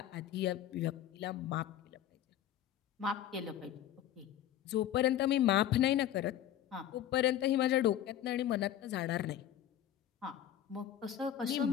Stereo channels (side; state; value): right; quieter; 11.2 dB